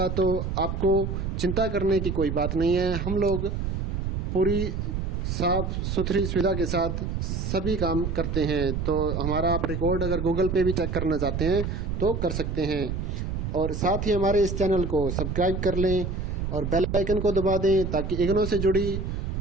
तो आपको चिंता करने की कोई बात नहीं है। हम लोग पूरी साफ सुथरी सुविधा के साथ सभी काम करते हैं। तो हमारा आप रिकॉर्ड अगर गूगल पे भी चेक करना चाहते हैं तो कर सकते हैं। और साथ ही हमारे इस चैनल को सब्सक्राइब कर लें और बेल आइकन को दबा दें ताकि इग्नो से जुड़ी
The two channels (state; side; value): noise; right; rumble, 3 dB below the sound